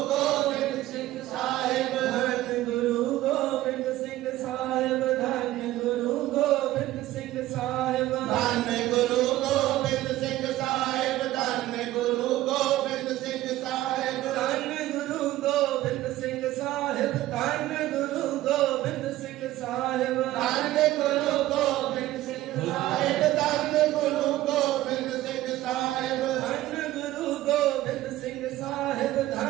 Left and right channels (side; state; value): left; quieter; 15.4 dB